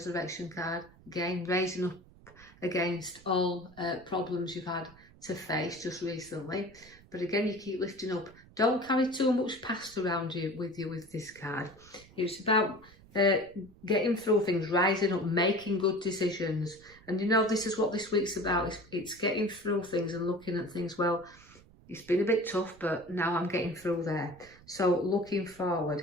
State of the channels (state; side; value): noise; right; rumble, 24 dB below the sound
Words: card. Again, raising up against all problems you've had to face just recently. But again, you keep lifting up. Don't carry too much past around you with this card. It's about getting through things, rising up, making good decisions. And you know, this is what this week's about. It's getting through things and looking at things. Well, it's been a bit tough, but now I'm getting through there. So looking forward